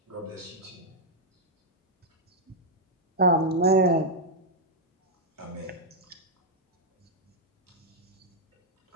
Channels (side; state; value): both; normal; correlation -0.04